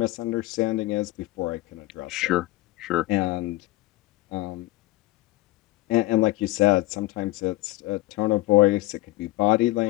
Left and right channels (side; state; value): right; quieter; 18.5 dB